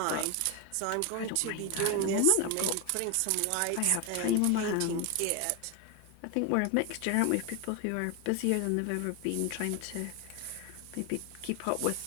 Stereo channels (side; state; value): both; different; correlation 0.01